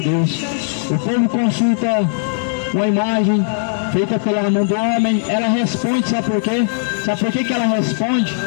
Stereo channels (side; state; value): right; silent; digital silence